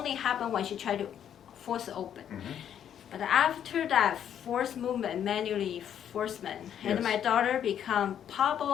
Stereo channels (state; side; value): quieter; right; 9.5 dB